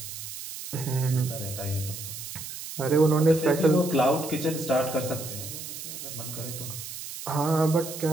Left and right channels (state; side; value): noise; right; hiss, 9 dB below the sound